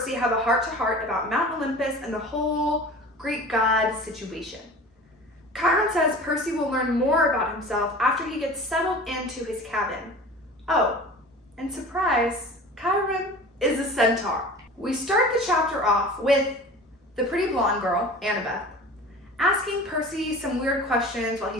have a heart-to-heart about Mount Olympus and the whole Greek god situation. Chiron says Percy will learn more about himself after he gets settled into his cabin. Oh, and surprise, Chiron is a centaur. We start the chapter off with the pretty blonde girl, Annabeth, asking Percy some weird questions while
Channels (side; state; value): both; normal; correlation 0.39